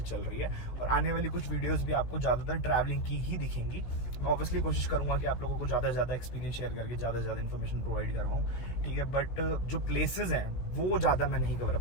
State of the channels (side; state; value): right; late; 16 ms